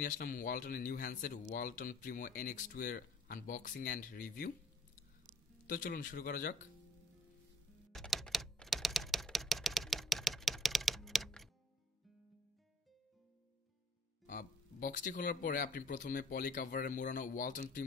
আসলাম ওয়ালটনের new handset Walton Primo NX2 এর আনবক্সিং অ্যান্ড রিভিউ। তো চলুন শুরু করা যাক। বক্সটি খোলার পরে আপনি প্রথমে পলি কাভারে মোড়ানো ওয়ালটন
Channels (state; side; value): normal; both; correlation 0.58